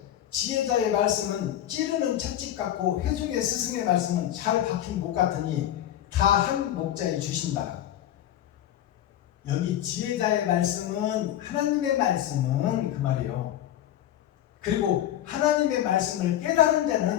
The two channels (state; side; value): quieter; right; 11.9 dB